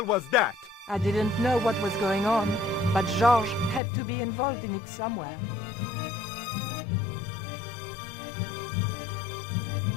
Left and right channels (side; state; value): right; drops out; at 3.8 s